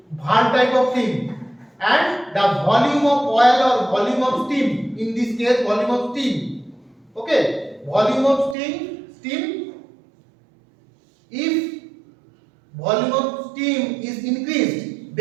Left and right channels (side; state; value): left; drops out; at 8.6 s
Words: valve type of thing, and the volume of oil or volume of steam, in this case volume of steam. Okay, volume of steam If volume of steam is increased,